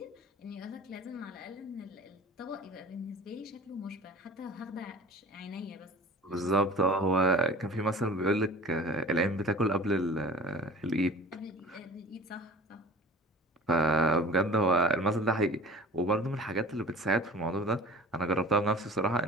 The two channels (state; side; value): normal; both; correlation 0.41